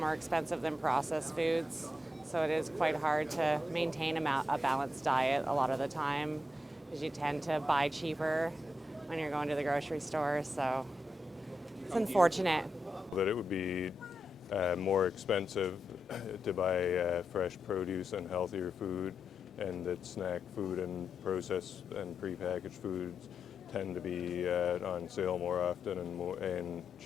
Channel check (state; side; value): normal; both; correlation 0.86